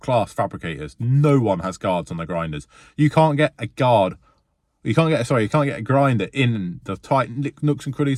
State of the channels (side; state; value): both; identical; correlation 1.00